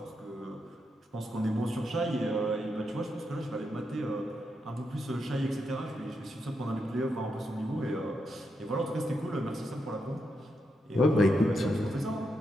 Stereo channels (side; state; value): both; normal; correlation 0.83